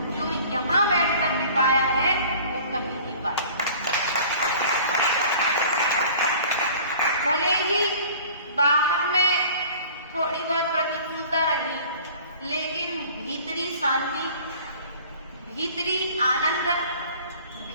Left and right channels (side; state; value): both; inverted; correlation -0.47